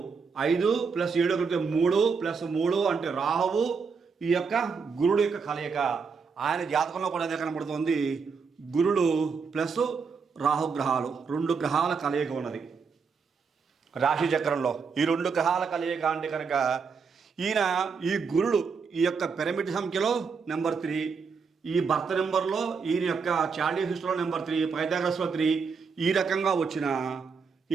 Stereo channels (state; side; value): quieter; left; 5.4 dB